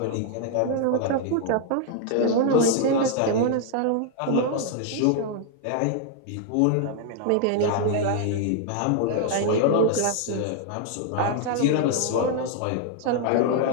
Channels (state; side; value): different; both; correlation 0.00